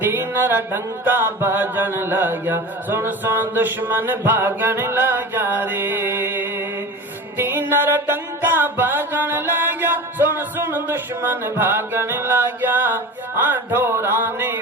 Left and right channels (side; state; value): both; normal; correlation 0.32